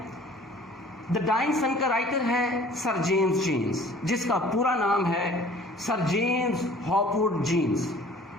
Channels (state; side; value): normal; both; correlation 0.50